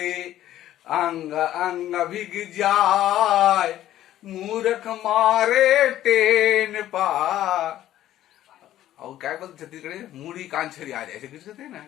अंग अंग भिग जाए, मूर्ख मारे टेन पार। और क्या बोलते छत्तीसगढ़ी, मूड़ी कान छरी आ जाए, ऐसे कुछ कहते हैं ना।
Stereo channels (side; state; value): right; quieter; 13.0 dB